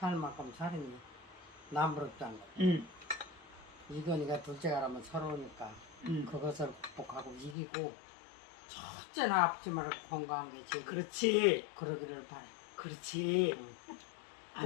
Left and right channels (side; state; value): right; drops out; at 7.6 s